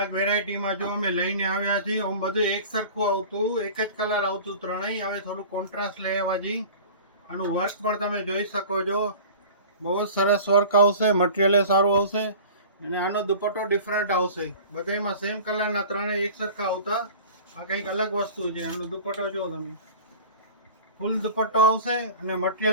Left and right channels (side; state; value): both; inverted; correlation -0.40